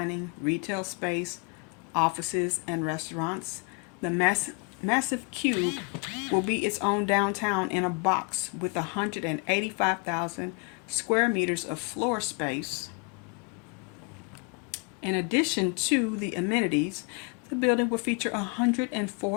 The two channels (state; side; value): quieter; right; 32.7 dB